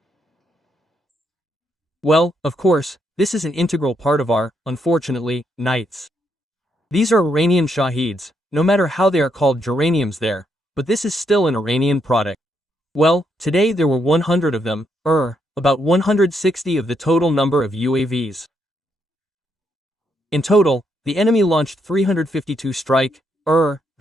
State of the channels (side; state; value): both; normal; correlation 0.77